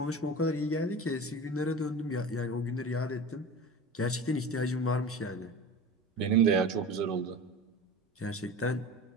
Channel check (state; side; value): normal; both; correlation 0.33